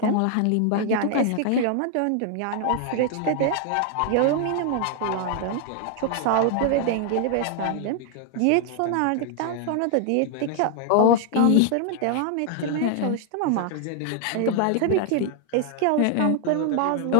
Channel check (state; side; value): different; both; correlation 0.00